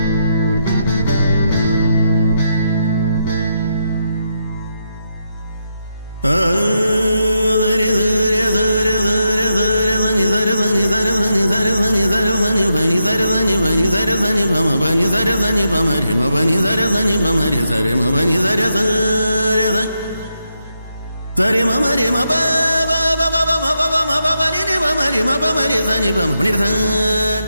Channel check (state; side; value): inverted; both; correlation -0.83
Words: Sari mama re ma ba ba ba ba ba ma ba ba ma ba ba ni ni ba ma re ma ba ma re sa ni ba ma ni sa